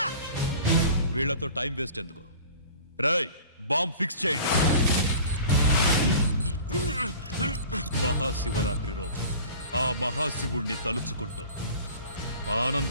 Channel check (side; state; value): both; inverted; correlation -0.42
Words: వీళ్లతో టైం వేస్ట్ ఎందుకు? రాయ్, బాంబ్ ఫిక్స్ చేయండి. మహాశివరాత్రి రోజు ఆ మహాశివుణ్ణి తలుచుకుంటూ